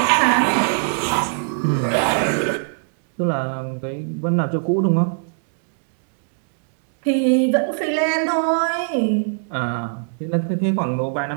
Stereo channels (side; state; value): left; silent; digital silence